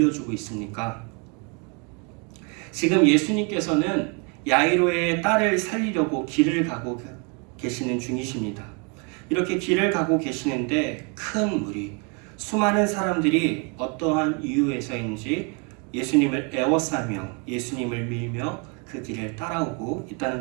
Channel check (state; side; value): quieter; left; 33.6 dB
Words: 있습니까? 지금 예수님께서는 야이로의 딸을 살리려고 길을 가고 계시는 중이십니다. 이렇게 길을 가고 계시는데 큰 무리, 수많은 사람들이 어떠한 이유에서인지 예수님을 애워싸며 예수님을 밀며 그 길을 따라오고